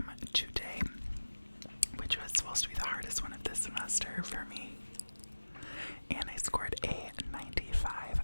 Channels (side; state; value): both; inverted; correlation -1.00